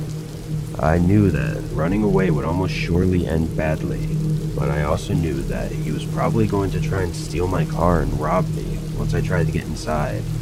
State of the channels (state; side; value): identical; both; correlation 1.00